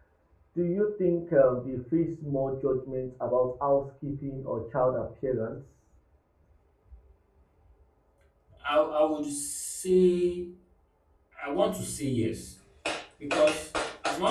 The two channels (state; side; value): identical; both; correlation 1.00